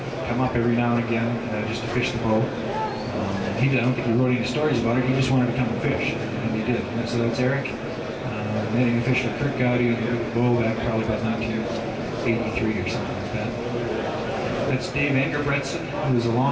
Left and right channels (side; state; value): both; identical; correlation 1.00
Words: come up every now and again just to fish the Bow. I don't think he wrote any stories about it. He just wanted to come and fish, and he did. And so that's Eric netting a fish for Kurt Gowdy on the Bow back probably about 1980 83 or something like that. That's Dave Engerbretson, who was a